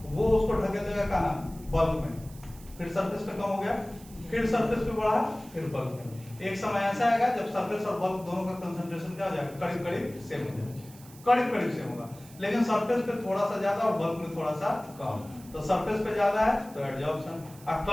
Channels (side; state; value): right; noise; hiss, 21 dB below the sound